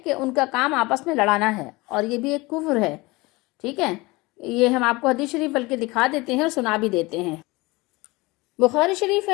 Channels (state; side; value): quieter; right; 22.8 dB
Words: کہ ان کا کام آپس میں لڑانا ہے، اور یہ بھی ایک کفر ہے. ٹھیک ہے، یہ ہم آپ کو حدیث شریف بلکہ دکھا دیتے ہیں اور سنا بھی دیتے ہیں. بخاری شریف